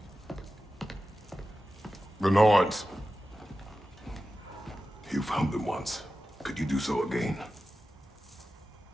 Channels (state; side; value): normal; both; correlation 0.93